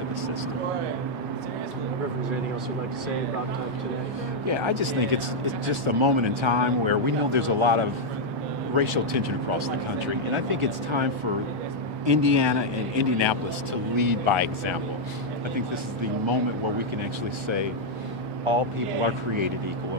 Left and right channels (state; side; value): normal; both; correlation -0.02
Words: the system. Is there anything else you'd like to say about today? Yeah, I just think it's just a moment in time where we know there's a lot of racial tension across the country, and I think it's time for Indiana and Indianapolis to lead by example. I think this is the moment where we can actually say all people are created equal,